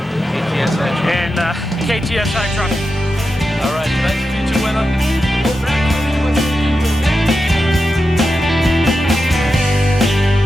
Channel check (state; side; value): normal; both; correlation 0.89